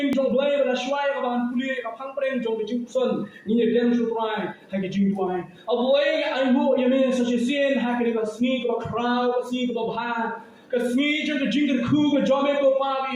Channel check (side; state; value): both; identical; correlation 1.00